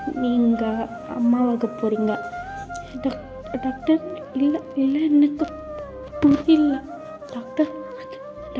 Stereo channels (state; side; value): identical; both; correlation 1.00